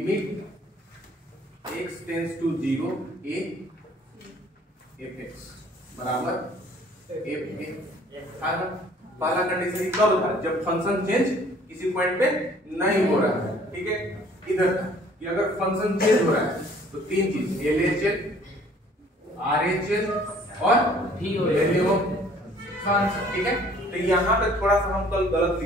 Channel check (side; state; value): both; normal; correlation 0.56